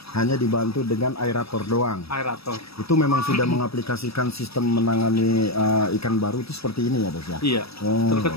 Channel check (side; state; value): right; late; 0.77 ms